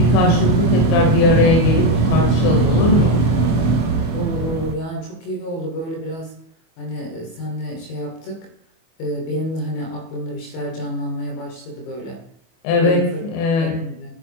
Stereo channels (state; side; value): late; right; 25 ms